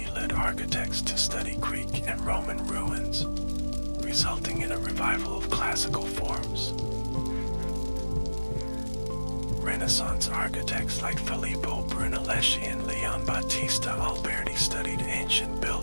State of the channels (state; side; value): inverted; both; correlation -1.00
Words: led architects to study Greek and Roman ruins, resulting in a revival of classical forms. Renaissance architects like Filippo Brunelleschi and Leon Battista Alberti studied ancient